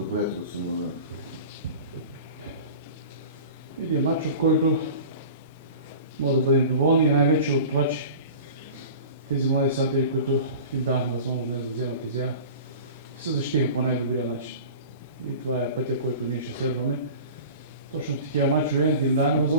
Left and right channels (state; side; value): inverted; both; correlation -0.38